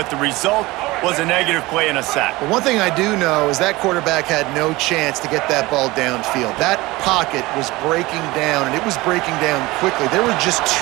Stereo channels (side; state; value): left; quieter; 20.7 dB